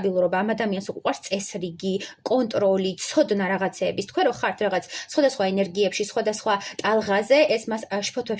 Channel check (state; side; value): identical; both; correlation 1.00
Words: ამ ადამიანს უყვარს წესრიგი, კონტროლი, ცოდნა რაღაცეების. თქვენ რო ხართ რაღაც სხვადასხვა ენერგიებში, სხვადასხვა ტალღაზე, ეს მას